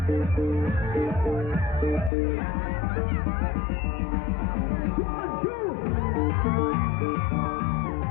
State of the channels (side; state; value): right; drops out; at 2.1 s